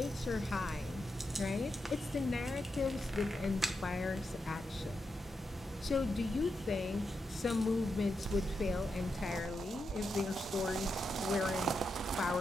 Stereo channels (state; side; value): normal; both; correlation 0.85